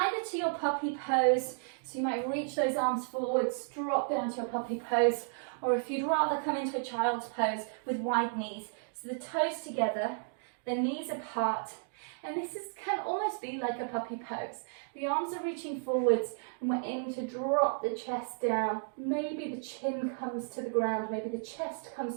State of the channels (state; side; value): silent; left; digital silence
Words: to your puppy pose. So you might reach those arms forwards, drop down to your puppy pose, or if you'd rather come into a child's pose with wide knees. So the toes together, the knees apart, and this can almost be like a puppy pose. The arms are reaching forwards, and we're aiming to drop the chest down. Maybe the chin comes to the ground, maybe the chest